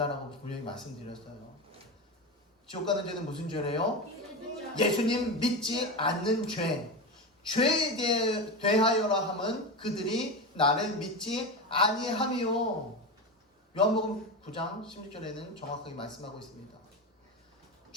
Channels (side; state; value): both; normal; correlation 0.20